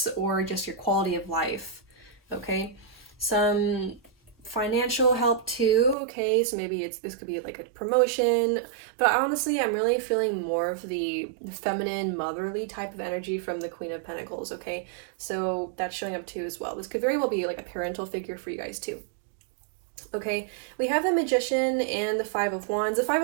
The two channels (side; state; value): left; drops out; at 6.0 s